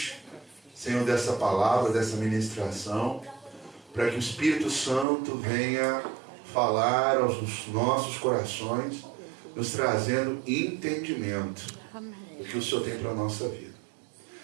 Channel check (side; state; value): left; drops out; at 5.1 s